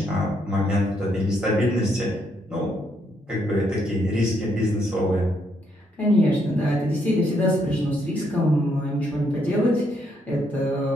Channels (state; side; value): normal; both; correlation 0.74